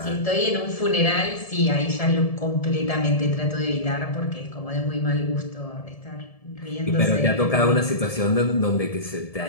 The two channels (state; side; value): late; right; 1.7 ms